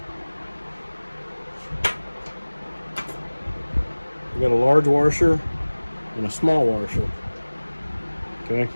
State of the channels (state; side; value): inverted; both; correlation -1.00